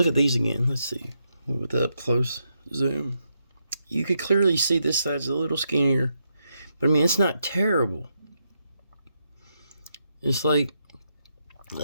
at these again. Let's see. With the up close zoom. You could clearly see this side's a little skinnier. But it's not terrible. It's like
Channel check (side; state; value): both; inverted; correlation -0.82